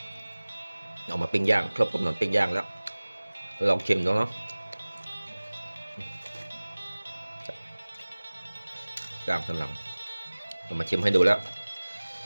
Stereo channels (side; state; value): both; inverted; correlation -1.00